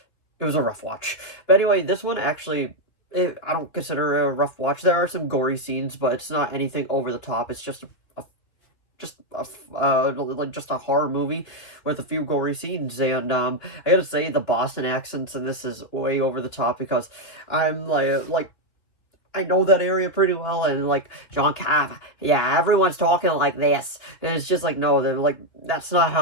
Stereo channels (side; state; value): right; late; 2.7 ms